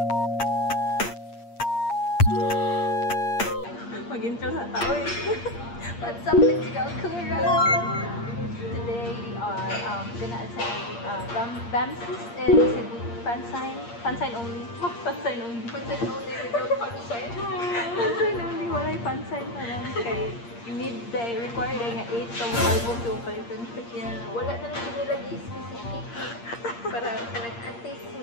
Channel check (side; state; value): right; late; 8.6 ms